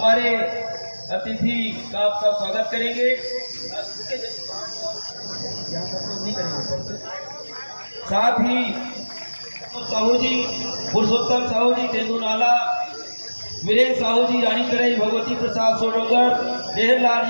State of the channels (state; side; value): inverted; both; correlation -1.00